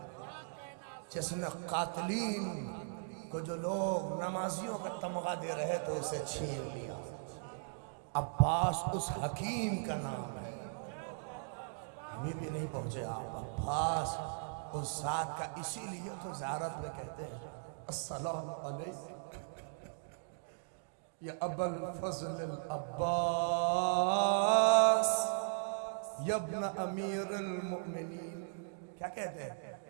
جس نے قاتلین کو جو لوگ نمازیوں کا تمغہ دے رہے تو اسے چھین لیا. عباس اس حکیم کا نام ہے. ابھی بھی نہیں پہنچے آپ. عباس اس ذات کا، اسی لیے تو زیارت میں کہتے ہیں السلام علیکم یا ابا الفضل العباس یا ابن امیر المؤمنین. کیا کہتے ہیں؟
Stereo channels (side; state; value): left; silent; digital silence